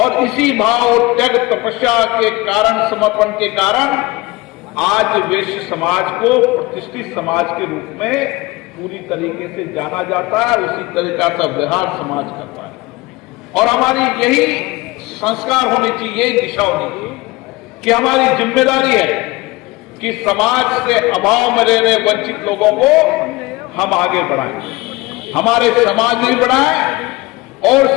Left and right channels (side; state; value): right; quieter; 22.0 dB